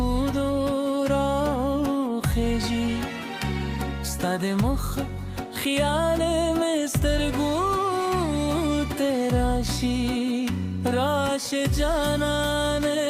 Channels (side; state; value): both; identical; correlation 1.00